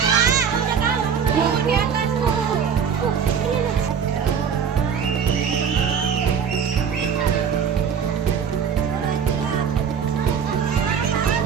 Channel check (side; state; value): left; quieter; 7.1 dB